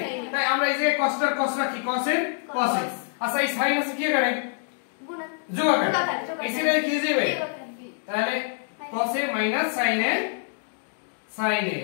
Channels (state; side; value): silent; right; 61 dB below the other